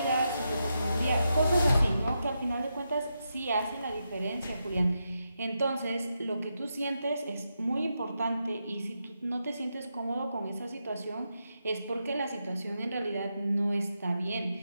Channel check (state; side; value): inverted; both; correlation -0.85